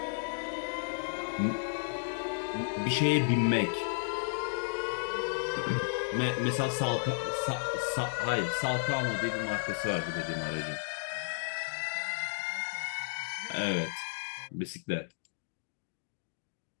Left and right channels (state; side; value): silent; right; digital silence